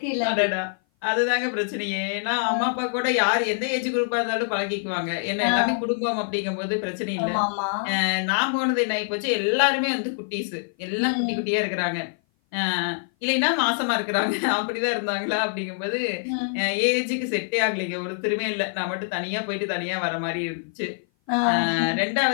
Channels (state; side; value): silent; right; 56 dB below the other